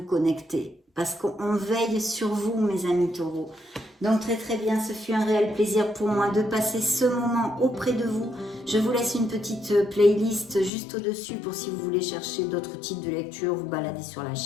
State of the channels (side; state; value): right; drops out; at 10.7 s